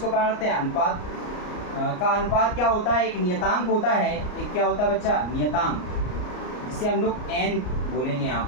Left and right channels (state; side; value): late; right; 34 ms